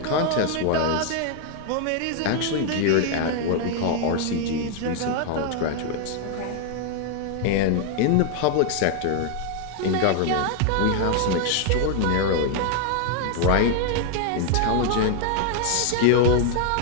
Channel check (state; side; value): different; both; correlation 0.00